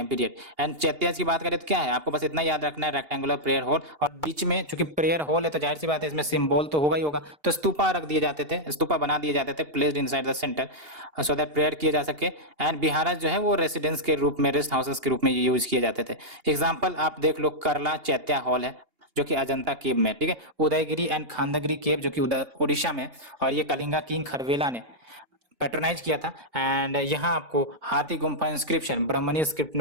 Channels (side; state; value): left; late; 2.8 ms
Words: period. And chaityas की बात करें तो क्या है, आपको बस इतना याद रखना है, रेक्टेंगुलर प्रेयर होल, और बीच में चूंकि प्रेयर होल है तो जाहिर सी बात है इसमें सिंबल तो होगा ही होगा, तो स्तूपा रख दिए जाते थे, स्तूपा बना दिए जाते थे placed inside the centre so that prayer किए जा सके। एंड बिहाराज जो है वो रेसिडेंस के रूप में, रेस्ट हाउसेस के रूप में यूज किए जाते थे। एग्जाम्पल आप देख लो, करला चैत्या हॉल है जो कि अजंता केव में, ठीक है, उदयगिरी एंड खांदगिरी केव जो कि उड़ीसा में, और ये कलिंगा किंग खरवेला ने पैट्रोनाइज किया था। एंड यहाँ आपको हाथी गुम्फा इंस्क्रिप्शन ब्राह्मणी स्क्रिप्ट